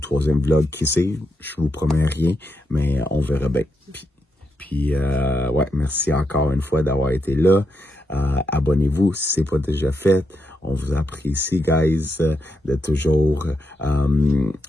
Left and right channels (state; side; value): normal; both; correlation 0.82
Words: vlog, qui sait? Je vous promets rien, mais on verra bien. Puis ouais, merci encore une fois d'avoir été là. Abonnez-vous si ce n'est pas déjà fait. On vous apprécie, guys, de toujours